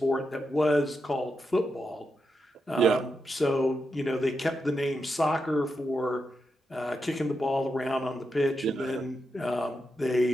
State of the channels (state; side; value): normal; both; correlation 0.86